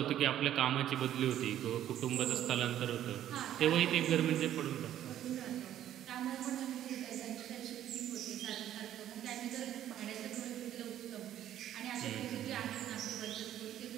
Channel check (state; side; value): quieter; left; 11.6 dB